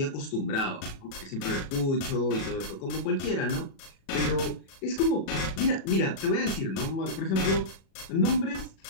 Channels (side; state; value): right; late; 37 ms